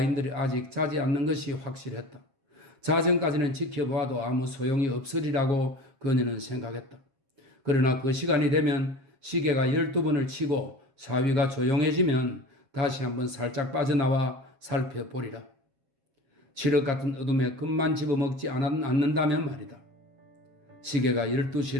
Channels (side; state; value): left; late; 7.3 ms